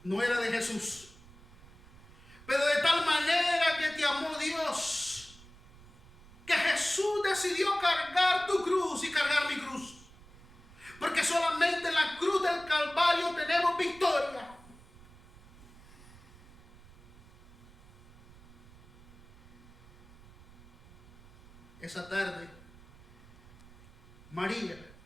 No era de Jesús. Pero de tal manera que te amó Dios, que Jesús decidió cargar tu cruz y cargar mi cruz. Porque solamente en la cruz del Calvario tenemos victoria. Esa tarde, María,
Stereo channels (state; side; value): noise; right; rumble, 21 dB below the sound